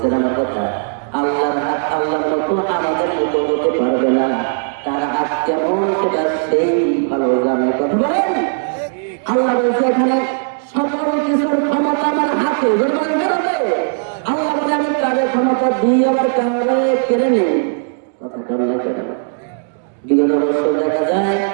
আমার কথা? আল্লাহর হাত আল্লাহর মতো আমাদের মতো হতে পারবে না। তার হাত কেমন সেটা সেই ভালো জানে। কথা বলেন। আল্লাহ বলছে এখানে সকল কিছুর ক্ষমতা আমার হাতে। আল্লাহ বলে আমি কারের ক্ষমতা দিয়ে আবার কারে কেড়ে নেই। কথা বল না কেন? বিগত বছর দেখা যায়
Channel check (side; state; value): left; silent; digital silence